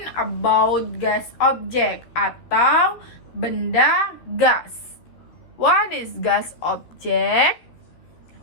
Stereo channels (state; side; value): late; right; 13 ms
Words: about gas object atau benda gas. What is gas object?